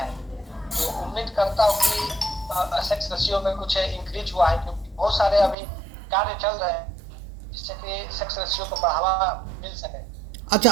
तो उम्मीद करता हूँ कि सेक्स रेशियो में कुछ इंक्रीज हुआ है, क्योंकि बहुत सारे अभी कार्य चल रहे हैं जिससे कि सेक्स रेशियो को बढ़ावा मिल सके।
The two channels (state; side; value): drops out; left; at 5.6 s